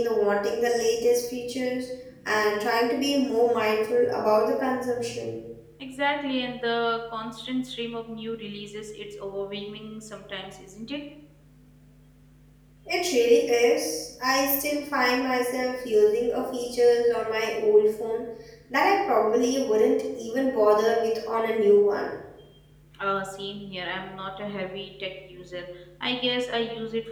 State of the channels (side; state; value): both; identical; correlation 1.00